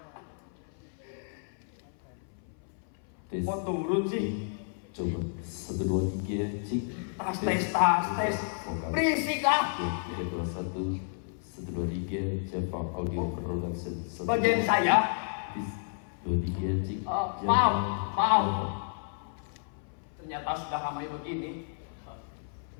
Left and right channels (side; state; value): right; silent; 57 dB below the other